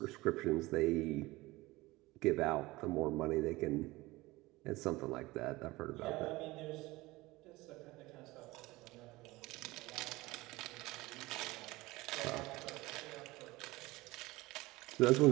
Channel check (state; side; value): quieter; left; 20.3 dB